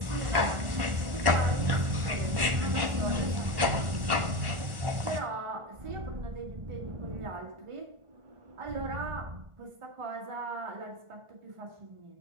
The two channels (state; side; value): late; left; 1.4 ms